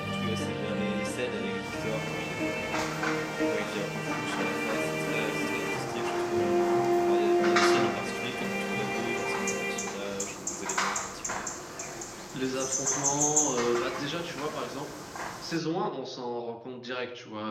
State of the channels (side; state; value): both; identical; correlation 1.00